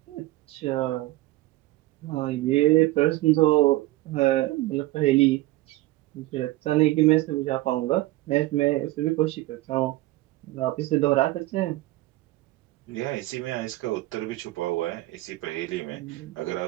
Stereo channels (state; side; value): quieter; left; 18.2 dB